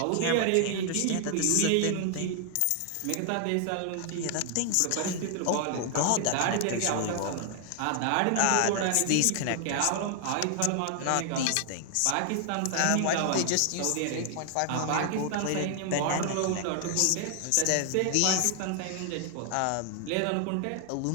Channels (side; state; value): both; different; correlation 0.00